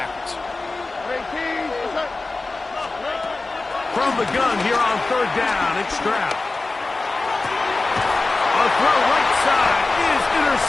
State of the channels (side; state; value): right; quieter; 3.4 dB